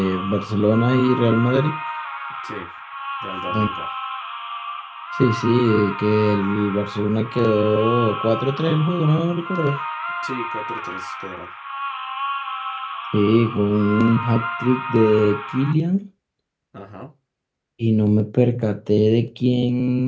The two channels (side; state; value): both; identical; correlation 1.00